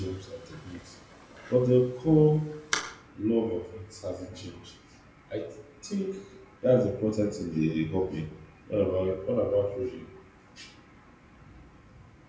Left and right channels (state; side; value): identical; both; correlation 1.00